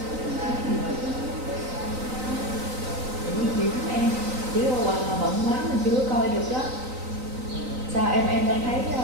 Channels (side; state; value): left; late; 3.9 ms